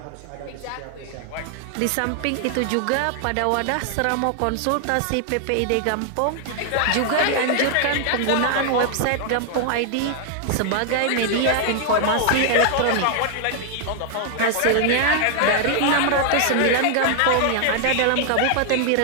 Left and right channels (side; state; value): both; different; correlation 0.00